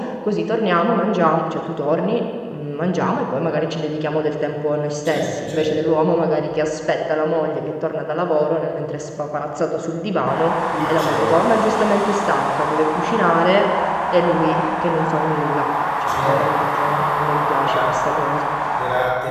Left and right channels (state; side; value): identical; both; correlation 1.00